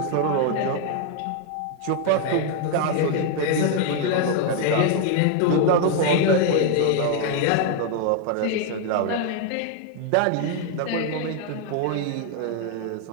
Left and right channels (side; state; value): both; different; correlation 0.00